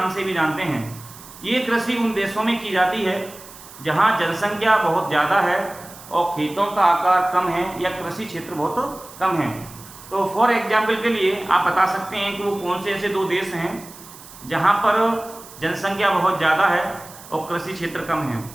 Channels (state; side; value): noise; right; hiss, 18 dB below the sound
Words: से भी जानते हैं। ये कृषि उन देशों में की जाती है जहाँ जनसंख्या बहुत ज़्यादा है और खेतों का आकार कम है या कृषि क्षेत्र बहुत कम है। तो फॉर एग्जाम्पल के लिए आप बता सकते हैं कि वो कौन से ऐसे दो देश हैं जहाँ पर जनसंख्या बहुत ज़्यादा है और कृषि क्षेत्र कम है।